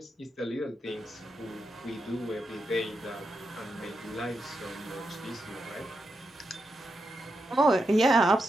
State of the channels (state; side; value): normal; both; correlation 0.85